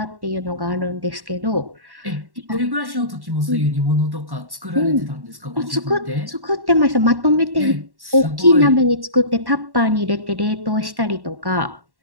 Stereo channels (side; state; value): left; late; 1.1 ms